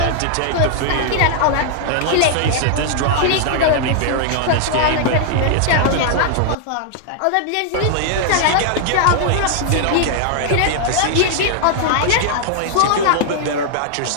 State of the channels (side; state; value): both; different; correlation -0.01